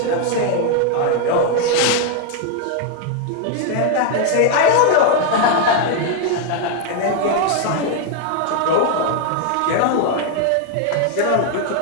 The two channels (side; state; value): both; different; correlation 0.00